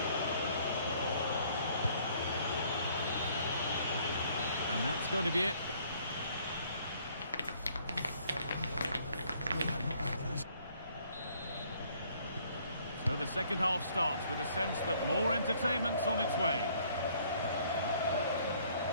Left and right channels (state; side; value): inverted; both; correlation -0.62